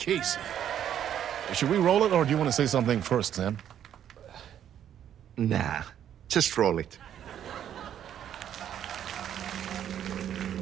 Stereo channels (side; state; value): left; quieter; 10.0 dB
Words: Should we roll it, or do you want to say something first, Sam? Nah, just roll it.